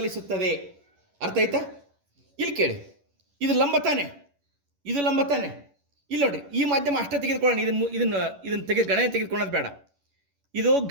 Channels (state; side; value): late; left; 11 ms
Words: ಅರ್ಥ ಆಯ್ತಾ? ಇಲ್ಲಿ ಕೇಳಿ, ಇದು ಲಂಬ ತಾನೆ, ಇದು ಲಂಬ ತಾನೆ. ಇಲ್ಲಿ ನೋಡ್ರಿ, ಈ ಮಾಧ್ಯಮ ಅಷ್ಟೇ ತೆಗೆದುಕೊಳ್ಳೋಣ, ಇದನ್ನು ಗಣನೆ ತೆಗೆದುಕೊಳ್ಳೋದು ಬೇಡ. ಇದು